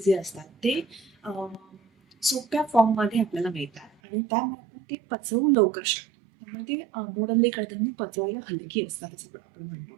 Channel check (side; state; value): left; drops out; at 3.9 s